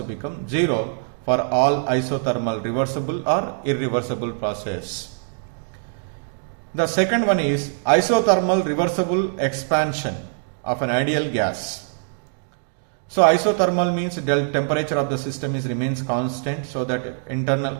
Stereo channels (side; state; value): left; silent; digital silence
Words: become 0 for all isothermal reversible or irreversible process. The second one is isothermal reversible expansion of an ideal gas. So isothermal means temperature of the system remains constant, so that